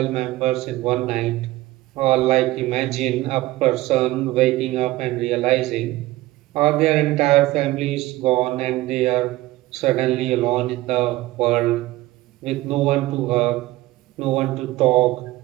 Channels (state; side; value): quieter; left; 17.9 dB